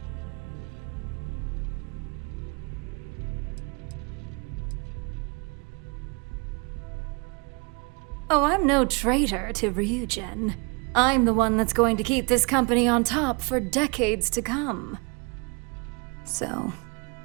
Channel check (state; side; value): quieter; left; 32.3 dB